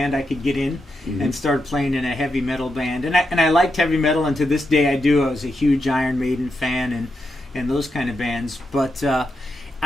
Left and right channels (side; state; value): both; normal; correlation 0.85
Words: I could get in, and started playing in a heavy metal band. And I liked heavy metal, and to this day I do. I was a huge Iron Maiden fan and those kind of bands, but